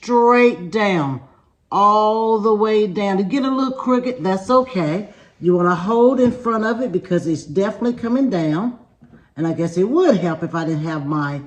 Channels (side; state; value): both; identical; correlation 1.00